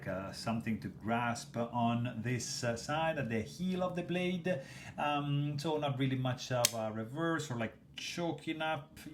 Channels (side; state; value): both; identical; correlation 1.00